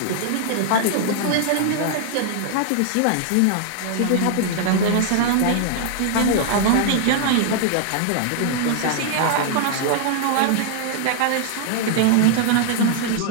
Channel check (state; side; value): different; both; correlation -0.01